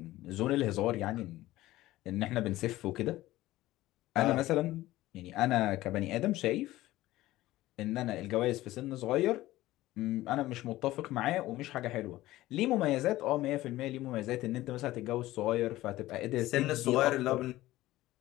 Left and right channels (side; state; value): right; quieter; 16.6 dB